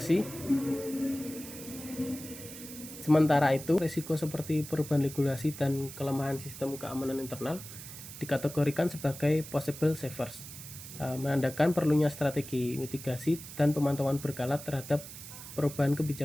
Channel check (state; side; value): noise; right; hiss, 13 dB below the sound